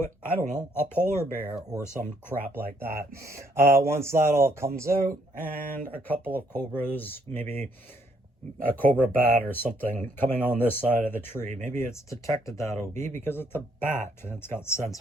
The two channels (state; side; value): normal; both; correlation 0.69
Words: I don't know, a polar bear or some crap like that. Once that all comes out, and a couple of cobras, maybe a cobra bat or something coming on this side of the tree. Maybe it's detected that OB because it's a bat and it's got